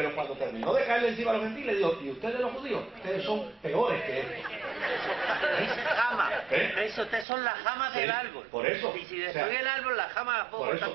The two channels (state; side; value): drops out; left; at 7.2 s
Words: cuando terminó de caerle encima a los gentiles, dijo, y ustedes los judíos, ustedes son peores que estos. Jama. ¿Eh? Eso, ustedes son las jamas del árbol. Por eso. Y si destruye el árbol, las jamas las puedo cortar